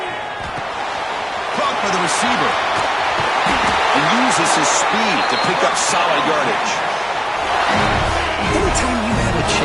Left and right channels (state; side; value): identical; both; correlation 1.00